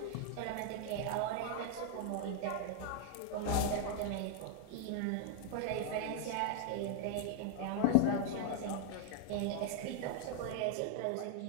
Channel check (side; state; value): both; different; correlation 0.00